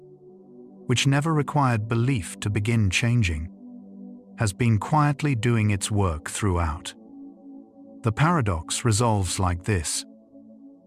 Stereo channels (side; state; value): both; identical; correlation 1.00